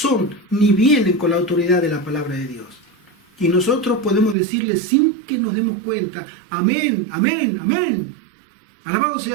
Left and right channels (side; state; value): left; drops out; at 4.4 s